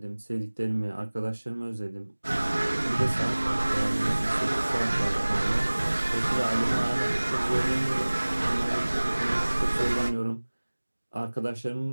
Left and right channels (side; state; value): both; inverted; correlation -1.00